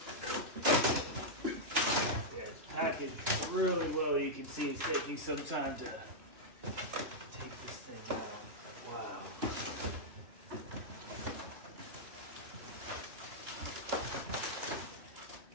Packaged really well. You can see it's taking some time to take this thing out. Wow.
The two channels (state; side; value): late; left; 2.9 ms